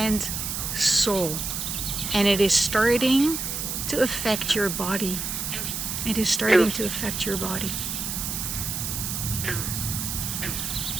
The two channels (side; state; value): right; noise; hiss, 3 dB below the sound